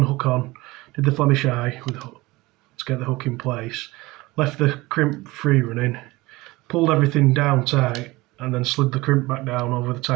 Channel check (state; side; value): quieter; left; 21.0 dB